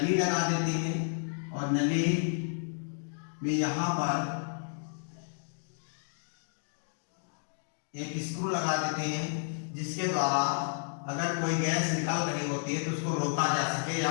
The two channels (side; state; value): right; silent; digital silence